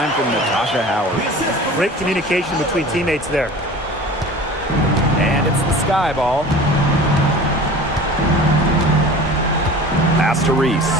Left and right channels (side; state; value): both; normal; correlation 0.40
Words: from Natasha Howard. Great communication between teammates there. And it's the Sky ball. Pass to Reese.